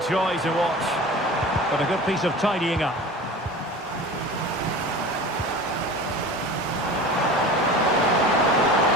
joy to watch, but a good piece of tidying up.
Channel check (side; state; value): both; normal; correlation 0.36